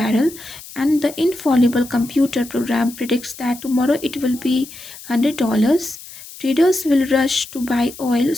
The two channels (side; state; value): left; noise; hiss, 16 dB below the sound